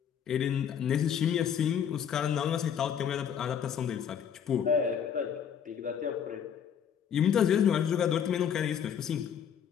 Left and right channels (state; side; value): quieter; right; 8.3 dB